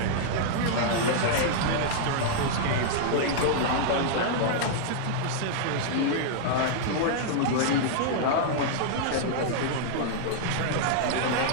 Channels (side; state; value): both; different; correlation -0.01